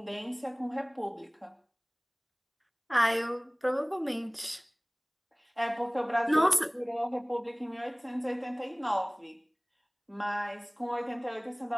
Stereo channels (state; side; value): identical; both; correlation 1.00